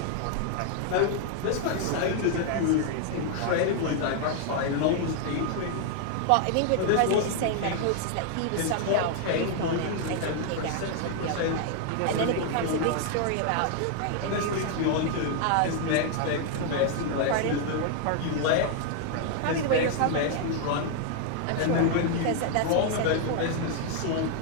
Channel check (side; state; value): both; different; correlation 0.00